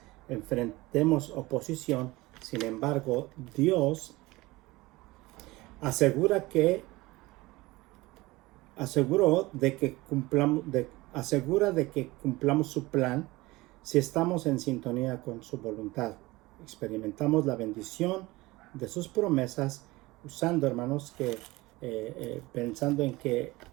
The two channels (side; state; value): left; quieter; 20.7 dB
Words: enfrentemos oposición. Sin embargo, Dios asegura que asegura de que cumplamos su plan si estamos en sintonía con su voluntad. Experimentamos la bendición de sus promesas usando, hermanos, que pensando en que